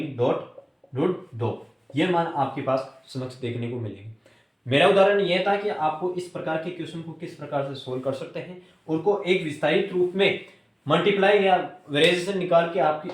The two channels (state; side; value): identical; both; correlation 1.00